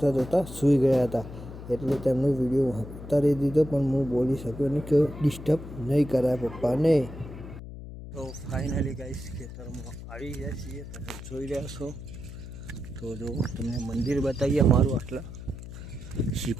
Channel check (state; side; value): noise; left; hum, 12 dB below the sound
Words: જોતા સૂઈ ગયા હતા, એટલે તેમનો વિડીયો ઉતારી દીધો, પણ હું બોલી શક્યો નહીં કે ડિસ્ટર્બ નહીં કરાય પપ્પાને. તો ફાઇનલી ગાઈસ ખેતરમાં આવી ગયા છીએ. તમે જોઈ રહ્યા છો. તો જો તમને મંદિર બતાવીએ અમારું. આટલા